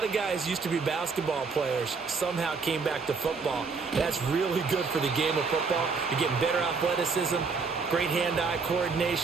of guys used to be basketball players, somehow came back to football. That's really good for the game of football. You're getting better athleticism, great hand-eye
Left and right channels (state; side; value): quieter; left; 4.8 dB